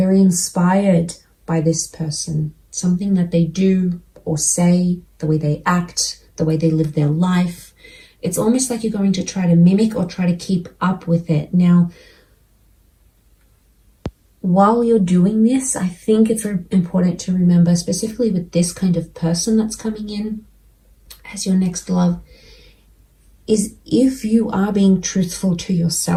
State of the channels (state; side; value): identical; both; correlation 1.00